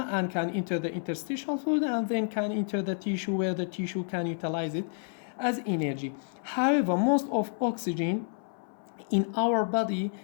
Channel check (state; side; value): silent; right; 58 dB below the other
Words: and can enter the interstitial fluid and then can enter the tissue where the tissue can utilize it as energy. However, most of oxygen in our body